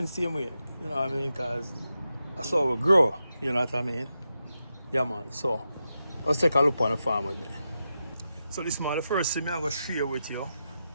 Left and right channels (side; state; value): both; inverted; correlation -0.88